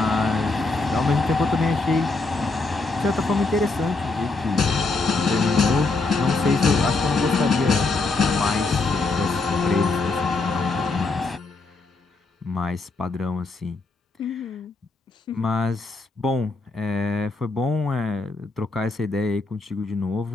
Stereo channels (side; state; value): right; quieter; 3.6 dB